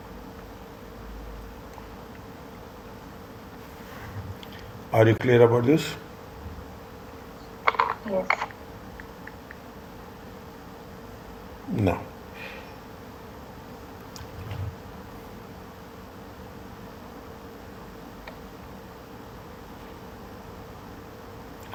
Are you clear about this? Yes. No.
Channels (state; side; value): identical; both; correlation 1.00